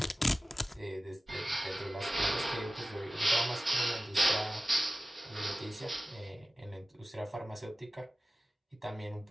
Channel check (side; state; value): both; normal; correlation 0.96